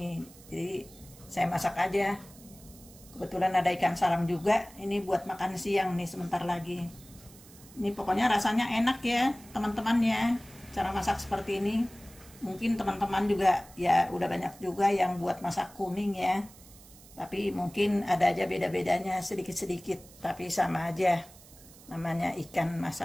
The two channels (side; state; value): right; noise; hiss, 22 dB below the sound